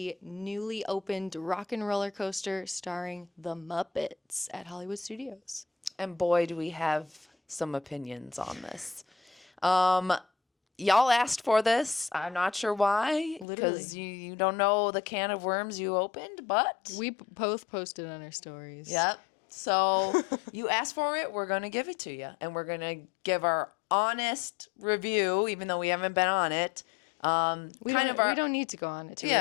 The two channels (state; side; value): drops out; right; at 13.5 s